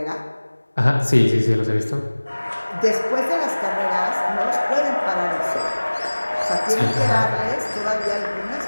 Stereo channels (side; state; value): both; inverted; correlation -1.00